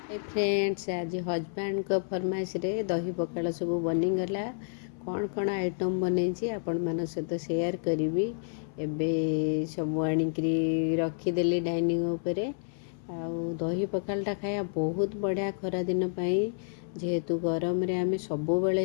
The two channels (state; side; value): silent; right; 58 dB below the other